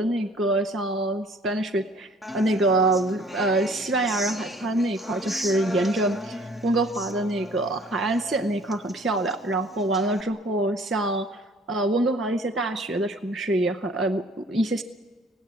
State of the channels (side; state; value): both; normal; correlation 0.54